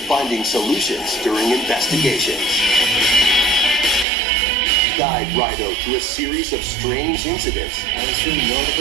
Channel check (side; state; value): left; drops out; at 4.0 s